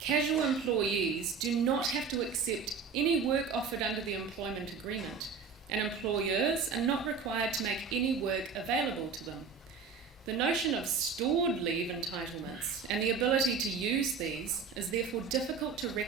casual employees do not have to accept any work offered under the employment agreement, and employers are not required to make any work available to them. The notion of stored leave entitlements and the ability to use these is therefore difficult to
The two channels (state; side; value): quieter; left; 5.4 dB